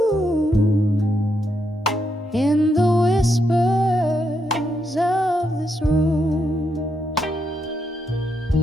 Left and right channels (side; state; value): both; normal; correlation 0.80